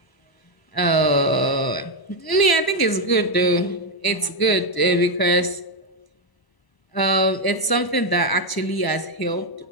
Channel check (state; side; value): late; right; 1.0 ms